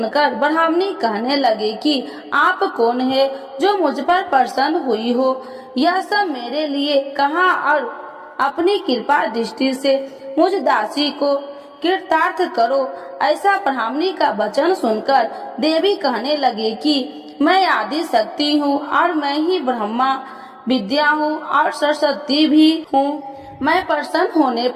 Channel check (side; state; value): both; identical; correlation 1.00